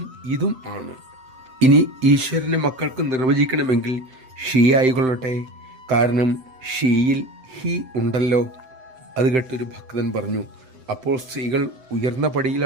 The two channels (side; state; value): left; late; 7.8 ms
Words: ഇതും ആണ്. ഇനി ഈശ്വരനെ മക്കൾക്ക് നിർവചിക്കണമെങ്കിൽ ഷീ ആയിക്കൊള്ളട്ടെ, കാരണം ഷീയിൽ ഹി ഉണ്ടല്ലോ. അത് കേട്ടൊരു ഭക്തൻ പറഞ്ഞു, അപ്പോൾ സ്ത്രീകൾ ഉയർന്ന